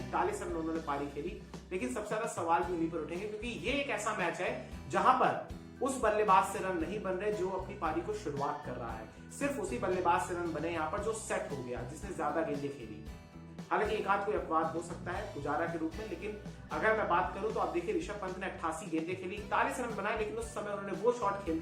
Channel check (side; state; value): both; identical; correlation 1.00